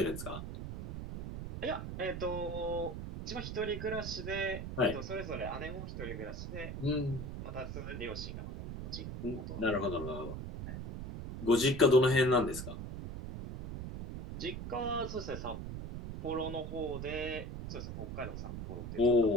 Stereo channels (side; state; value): right; noise; rumble, 7 dB below the sound